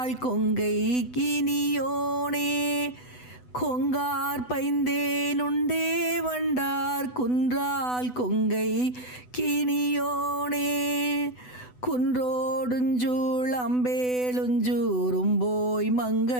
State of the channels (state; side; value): late; right; 8.0 ms